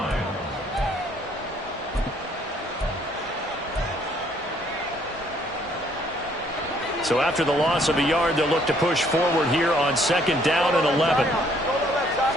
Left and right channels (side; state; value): both; normal; correlation 0.64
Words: So after the loss of a yard, they'll look to push forward here on second down and 11.